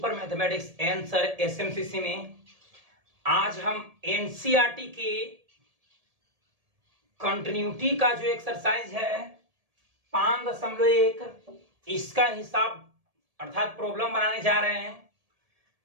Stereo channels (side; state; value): left; late; 1.7 ms